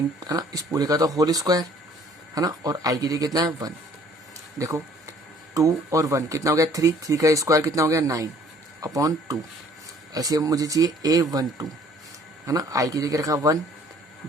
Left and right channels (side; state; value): both; normal; correlation 0.57